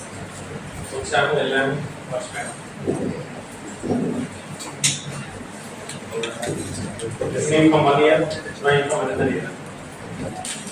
So example 11 first time. Listening from one ear, trying from another ear.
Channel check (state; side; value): identical; both; correlation 1.00